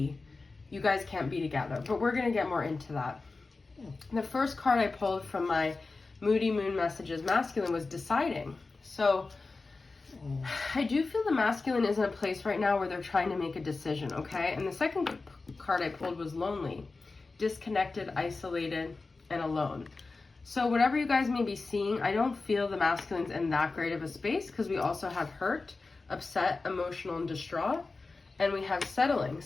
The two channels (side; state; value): right; quieter; 3.8 dB